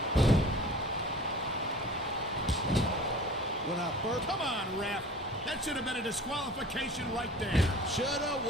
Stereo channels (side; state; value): both; normal; correlation 0.42